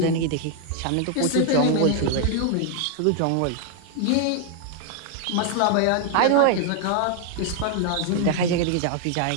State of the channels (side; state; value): both; different; correlation 0.00